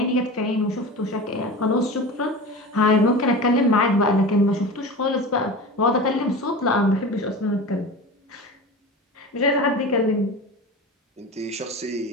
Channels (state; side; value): normal; both; correlation 0.31